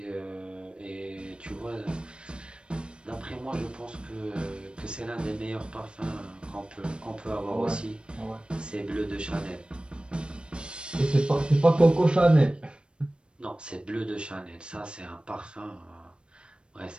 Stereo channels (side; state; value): left; late; 0.055 ms